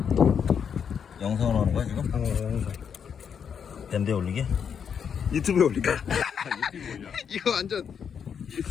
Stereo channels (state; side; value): quieter; right; 7.3 dB